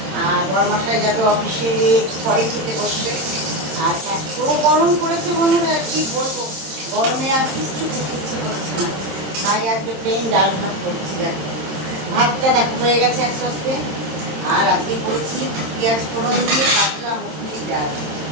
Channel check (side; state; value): left; late; 26 ms